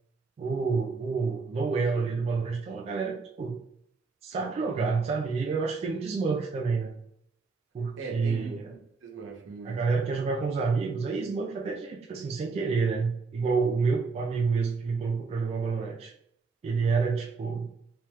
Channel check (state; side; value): quieter; left; 4.4 dB